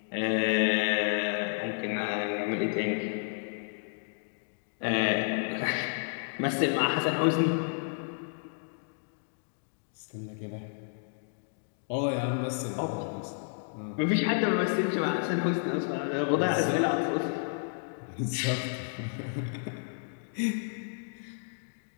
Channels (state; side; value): silent; right; digital silence